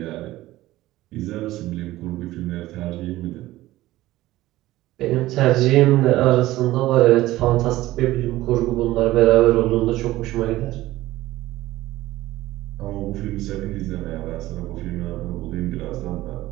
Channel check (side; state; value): left; quieter; 16.6 dB